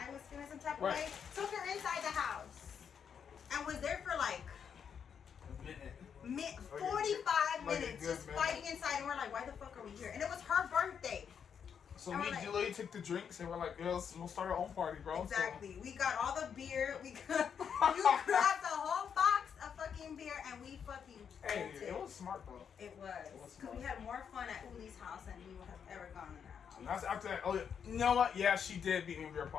was feeling some type of Right. way, took her inside the house, and was there for like. A minute. 45 Like a minutes good just minute. fighting inside, and we're like, why the fuck are we here? And it was her birthday. So And me we're and like- Julie took the drinks and we're like, girls, we'll start our own party, bro. Exactly. We got all the beer. You grabbed a whole box of fucking beer, and we fucking So, hey, bolted. it was smart though. It was. was Because we had more fun at Uli's house than we would have ever gone in that. And that's after that. Oh, yeah. You know what? Yeah, she did beat me in beer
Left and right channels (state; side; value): quieter; right; 7.4 dB